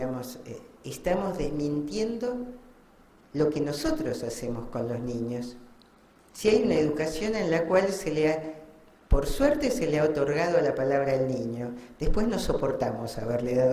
estamos desmintiendo lo que nosotros hacemos con los niños. Si hay una educación en la cual por suerte se le ha otorgado la palabra al niño, después no soportamos haberle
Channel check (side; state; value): both; identical; correlation 1.00